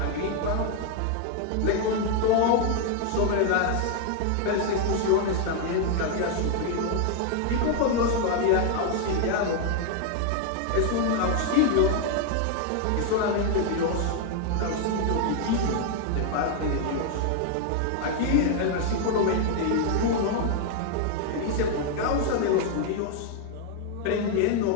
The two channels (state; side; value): different; both; correlation 0.00